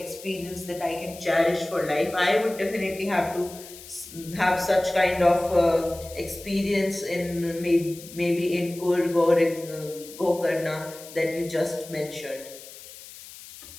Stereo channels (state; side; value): noise; left; hiss, 16 dB below the sound